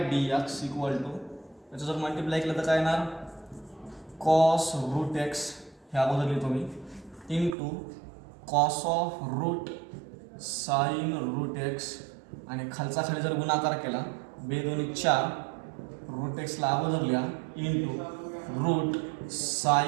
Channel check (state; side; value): drops out; left; at 7.6 s